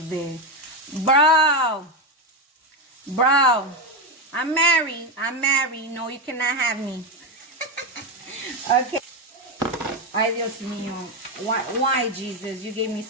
Bro. I'm married. No, you cannot have me. Okay. Ay, Dios mío. Why, Jesus? You gave me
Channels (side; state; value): both; normal; correlation 0.11